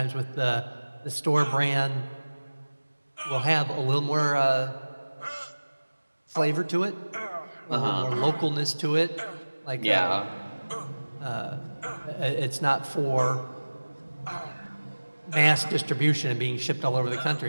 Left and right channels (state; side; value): inverted; both; correlation -1.00